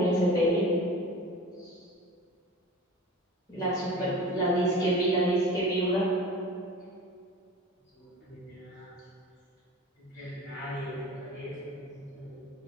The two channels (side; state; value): both; normal; correlation 0.37